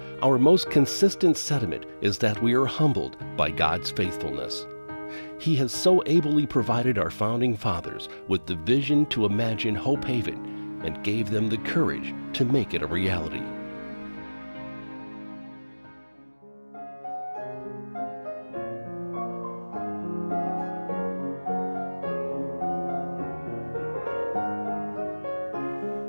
our most consistent sentiment is that we are humbled by God's faithfulness. He has so ably provided our founding fathers with the vision to imagine Hope Haven and gave them the courage to make it a reality.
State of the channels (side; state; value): both; inverted; correlation -1.00